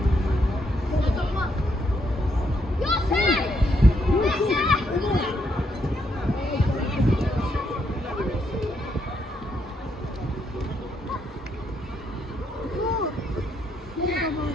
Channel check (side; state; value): both; normal; correlation 0.76